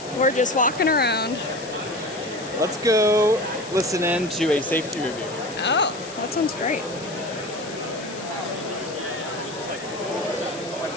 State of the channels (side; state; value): left; noise; hiss, 15 dB below the sound